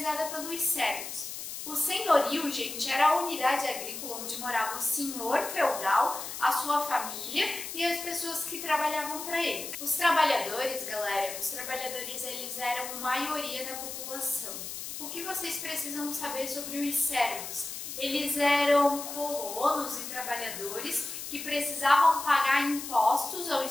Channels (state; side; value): noise; left; hiss, 8 dB below the sound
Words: pelos servos. O senhorio, gente, era a unidade agrícola onde morava o senhor feudal, a sua família e as pessoas que trabalhavam para ele. Os trabalhadores, galera, eles eram maioria da população. O que vocês precisam saber sobre os servos? Eles eram colonos e trabalhadores que precisavam pagar impostos aos